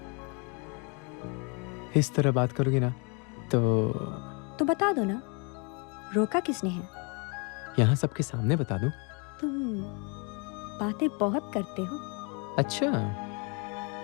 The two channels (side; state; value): right; quieter; 33.6 dB